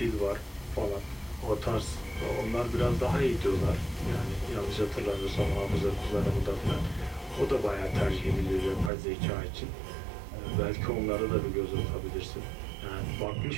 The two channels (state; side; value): drops out; left; at 8.9 s